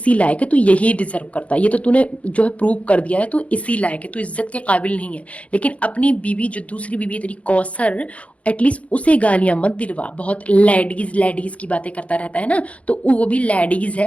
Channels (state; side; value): late; right; 0.064 ms